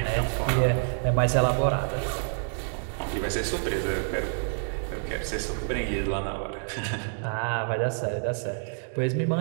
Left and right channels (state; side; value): silent; left; 60 dB below the other